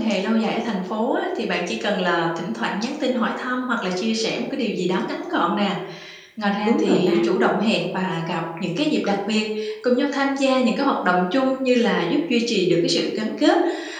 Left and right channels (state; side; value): identical; both; correlation 1.00